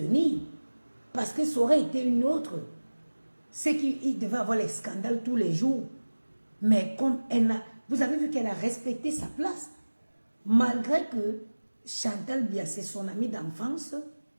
Parce que ça aurait été une autre. C'est qu'il devait avoir les scandales tous les jours. Mais comme elle a, vous avez vu qu'elle a respecté sa place. Malgré que Chantal Biaye, c'est son amie d'enfance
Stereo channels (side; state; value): both; inverted; correlation -1.00